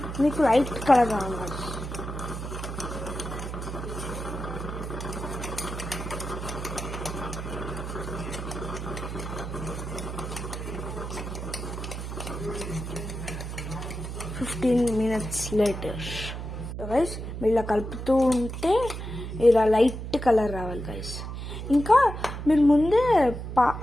మీకు light colour రావాలి guys. minutes later guys, మీరు ఇలా కలుపుతూ ఉంటే ఇలా లైట్ కలర్ రావాలి గైస్. ఇంకా మీరు ముందే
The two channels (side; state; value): right; noise; hum, 7 dB below the sound